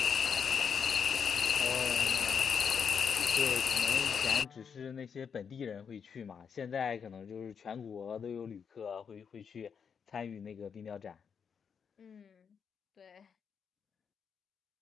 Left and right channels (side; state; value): right; quieter; 6.7 dB